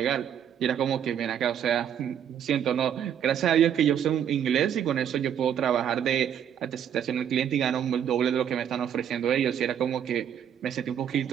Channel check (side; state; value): left; quieter; 9.1 dB